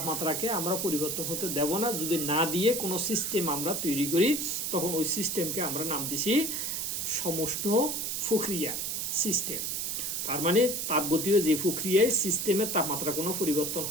আমরা পরিবর্তন হতে দেব না। যদি না দিয়ে কোনো সিস্টেম আমরা তৈরি করি তখন ওই সিস্টেমকে আমরা নাম দিছি সমষ্ণ প্রক্রিয়া সিস্টেম। তার মানে তাপগতীয় যে প্রক্রিয়ায় সিস্টেমের তাপমাত্রা কোনো পরিবর্তন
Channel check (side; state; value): right; noise; hiss, 2 dB below the sound